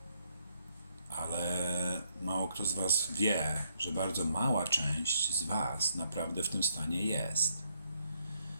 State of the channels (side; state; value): both; inverted; correlation -0.72